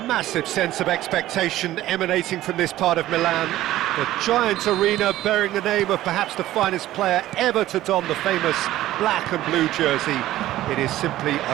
massive sense of expectation emanating from this part of Milan. The giant arena bearing the name of perhaps the finest player ever to don the famous black and blue jersey. It is simply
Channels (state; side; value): quieter; left; 14.7 dB